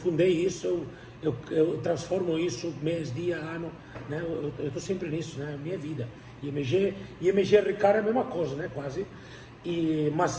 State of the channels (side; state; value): both; identical; correlation 1.00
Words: isso, eu transformo isso mês, dia, ano, né? Eu estou sempre nisso, né? Minha vida. E MG Ricardo é a mesma coisa, né? Quase. Mas